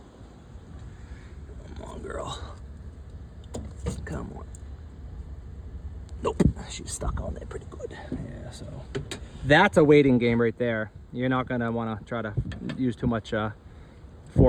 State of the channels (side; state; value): both; identical; correlation 1.00